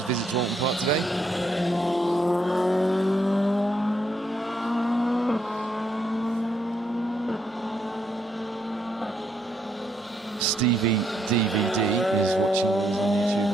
visit to Oulton Park today. Stevie DVD is watching these on YouTube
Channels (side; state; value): both; normal; correlation 0.75